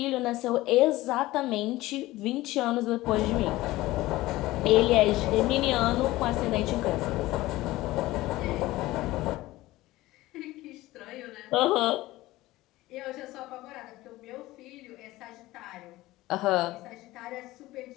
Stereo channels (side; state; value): right; quieter; 17.9 dB